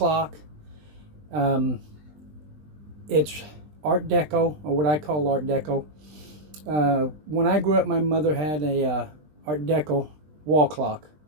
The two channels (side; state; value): left; late; 20 ms